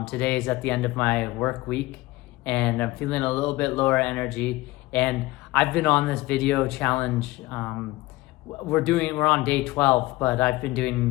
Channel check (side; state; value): right; quieter; 19.5 dB